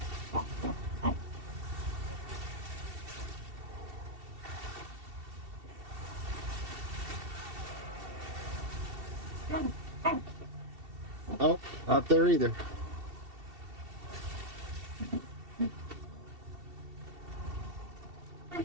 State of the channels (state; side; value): late; left; 2.7 ms